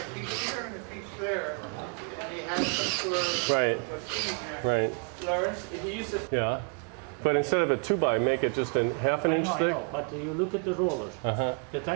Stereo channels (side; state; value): left; quieter; 38.0 dB